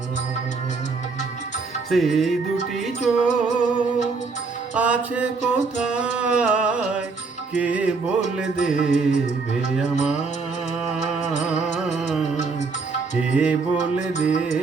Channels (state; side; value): quieter; left; 4.4 dB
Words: সেই দুটি চোখ আছে কোথায়, কে বলে দেবে আমায়, কে বলে